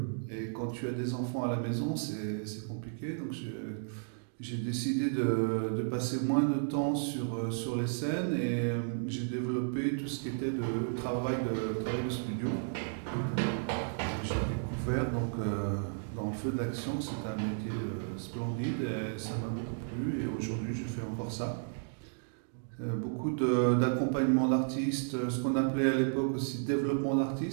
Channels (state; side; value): silent; left; digital silence